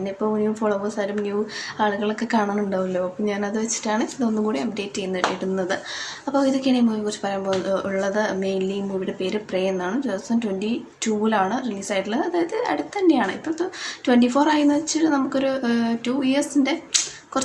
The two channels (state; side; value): identical; both; correlation 1.00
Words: ഇപ്പോൾ ന്യൂ ഫോളോവേഴ്സായാലും ന്യൂ ആളുകളൊക്കെ കാണാനുണ്ടാവുമല്ലോ. അപ്പോൾ ഞാനത് വെച്ചിട്ടാണ് ഇതൊന്നും കൂടി അപ്ഡേറ്റ് ഇടുന്നത്. അപ്പോൾ ഇതൊക്കെയാണ് ഈ മൂവിയെക്കുറിച്ച് പറയാൻ ഉള്ളത്. മെയിൻലി ഈ മൂവിയുടെ പേര് പ്രേ എന്നാണ്. 2022 റിലീസായിട്ടുള്ളത്. അതായത് അടുത്ത് തന്നെയാണ്. ഇപ്പോൾ 24 ആയെന്ന് വെച്ചിട്ട് നമുക്കൊരു 2 ഇയേഴ്സിൻ്റെ